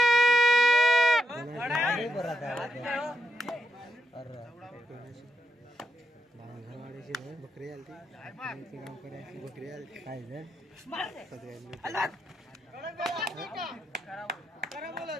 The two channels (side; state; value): both; normal; correlation 0.81